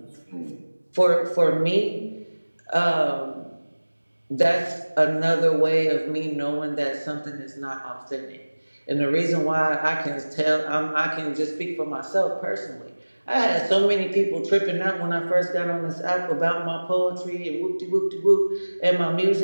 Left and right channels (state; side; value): inverted; both; correlation -1.00